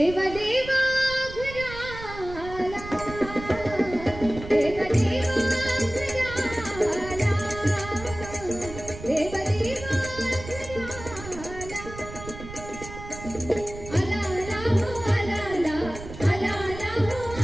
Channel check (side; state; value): right; noise; rumble, 12 dB below the sound